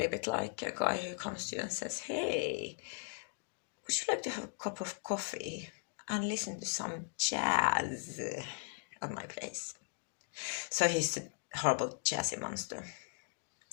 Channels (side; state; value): right; silent; 52 dB below the other